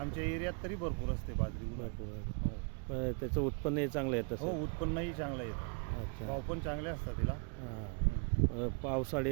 एरियात तरी भरपूर असते बाजरी. भरपूर. त्याचं उत्पन्नही चांगलं येतं? हो, उत्पन्नही चांगलं येतं. अच्छा. भाव पण चांगले असतात तिला.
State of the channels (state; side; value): quieter; left; 38.2 dB